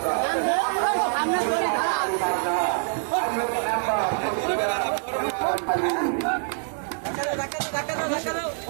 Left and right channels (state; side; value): silent; left; 62 dB below the other